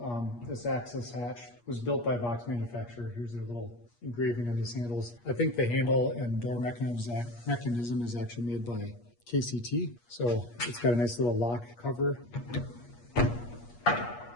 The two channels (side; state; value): right; late; 8.4 ms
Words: this access hatch was built by Box Manufacturer. Here's their little engraving on these handles. I think the handle and door mechanism is actually made by KCT. So it's got a nice little lock cover.